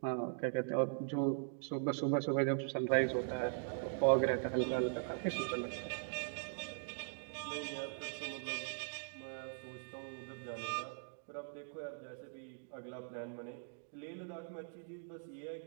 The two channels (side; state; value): left; silent; digital silence